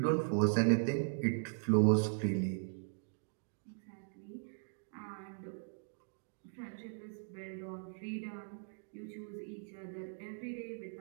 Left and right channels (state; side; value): silent; left; digital silence